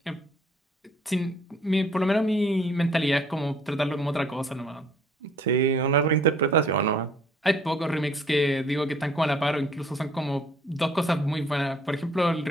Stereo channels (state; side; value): normal; both; correlation 0.60